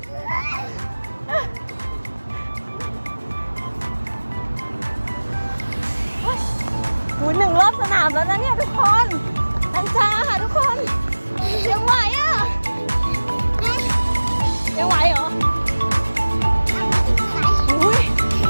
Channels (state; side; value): inverted; both; correlation -1.00